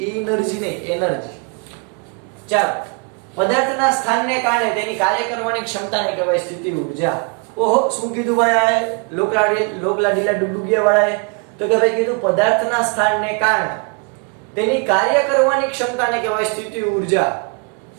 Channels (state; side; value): quieter; left; 34.9 dB